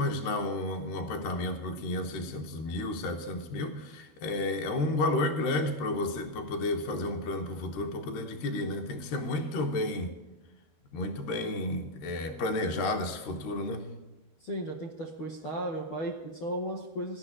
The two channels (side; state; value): right; late; 13 ms